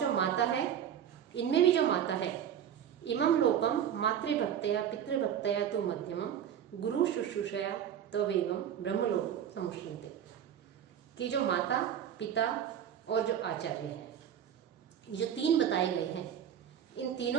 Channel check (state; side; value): quieter; left; 9.3 dB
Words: माता है, इनमें भी जो माता है, इमं लोकम मातृभक्तया पितृभक्तया तु मध्यमम गुरु शुश्रूषया तवेगम ब्रह्मलोक समुष्यन्ते। कि जो माता पिता और जो आचार्य है, जो 3 बताए गए हैं, इन